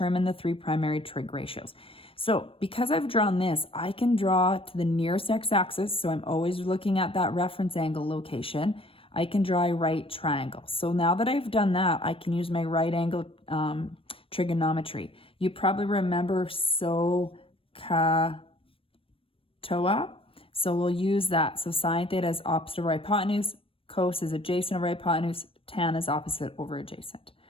the 3 primary trig ratios. So because I've drawn this, I can draw to the nearest x-axis, so I'm always looking at that reference angle location. I can draw a right triangle. So now that I've done that, I can use my right angle trigonometry. You probably remember SOHCAHTOA. So we'll use that. So sine theta is opposite over hypotenuse, cos is adjacent over hypotenuse, tan is opposite over adjacent.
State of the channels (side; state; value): right; late; 0.26 ms